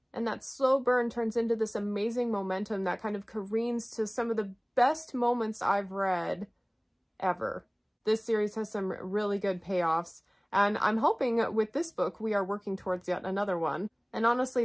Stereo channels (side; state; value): both; identical; correlation 1.00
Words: And that slow burn turns into this amazing momentum that kind of careens to some of the best moments I've read ever. This series has some really good payoffs. And I'm hoping with this book, we are working towards yet another one. And honestly,